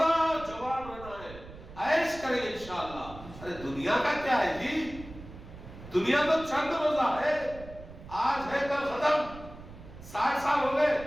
جوان رہنا ہے، عیش کریں گے انشاءاللہ. ارے دنیا کا کیا ہے جی؟ دنیا تو چند روزہ ہے، آج ہے کل ختم. 60 سال ہو گئے،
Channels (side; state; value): right; noise; rumble, 16 dB below the sound